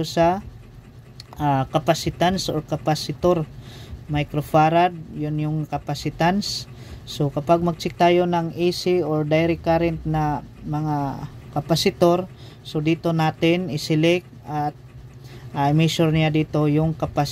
sa capacitance or capacitor, microfarad, yun yung capacitance. So kapag mag-check tayo ng AC or direct current na mga kapasitor, so dito natin i-select at i-measure niya dito yung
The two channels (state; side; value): identical; both; correlation 1.00